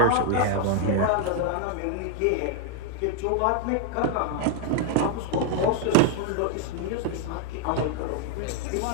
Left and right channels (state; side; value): different; both; correlation 0.00